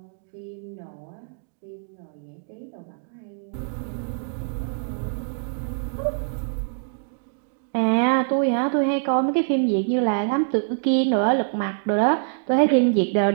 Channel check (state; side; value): silent; left; digital silence